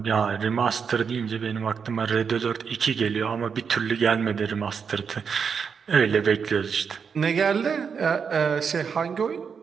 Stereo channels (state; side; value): quieter; left; 6.3 dB